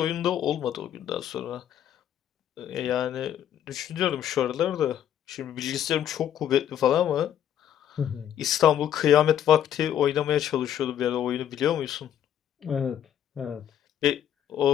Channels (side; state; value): right; quieter; 10.3 dB